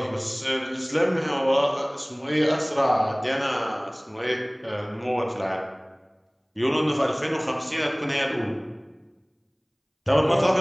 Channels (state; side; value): identical; both; correlation 1.00